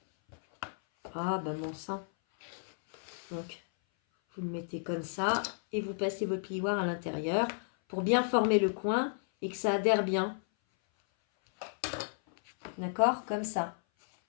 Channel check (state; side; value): silent; right; 56 dB below the other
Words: Ah, bah mon sang. Donc, vous le mettez comme ça et vous passez votre plioir à l'intérieur pour bien former le coin et que ça adhère bien. D'accord? Comme ça.